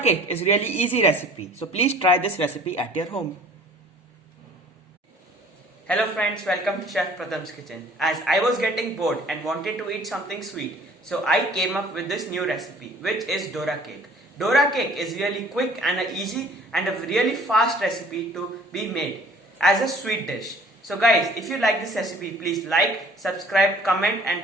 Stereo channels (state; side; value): normal; both; correlation 0.52